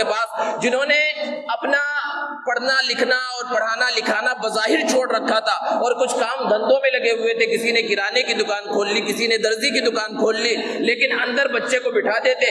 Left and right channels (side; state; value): both; identical; correlation 1.00